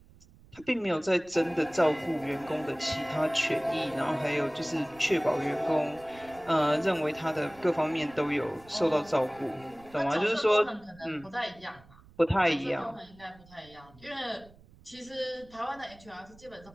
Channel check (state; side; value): noise; right; rumble, 25 dB below the sound